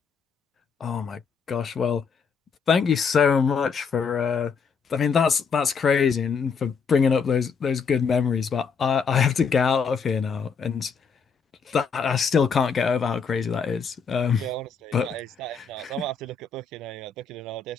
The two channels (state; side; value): quieter; right; 5.7 dB